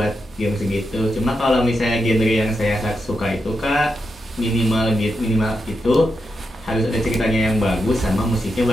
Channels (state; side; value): normal; both; correlation 0.86